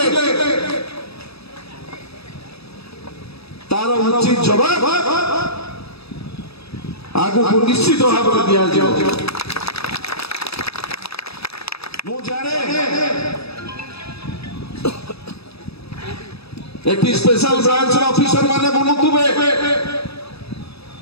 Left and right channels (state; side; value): late; right; 0.78 ms